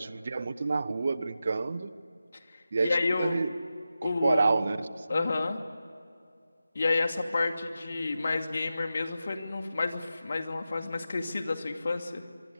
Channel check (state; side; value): inverted; both; correlation -0.91